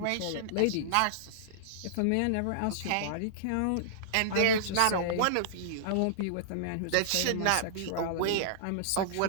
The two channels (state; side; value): different; both; correlation -0.02